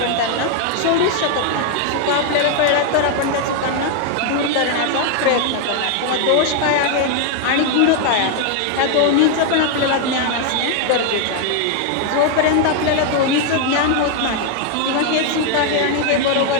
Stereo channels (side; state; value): both; different; correlation 0.00